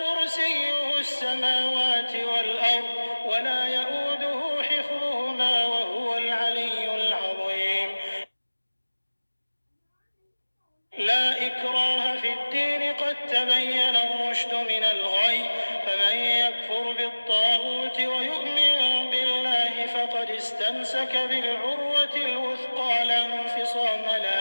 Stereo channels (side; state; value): both; inverted; correlation -1.00